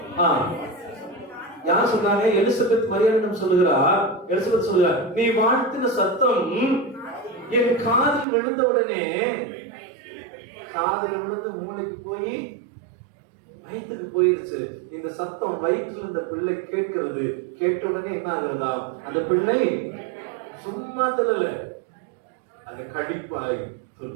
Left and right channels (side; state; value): left; drops out; at 8.2 s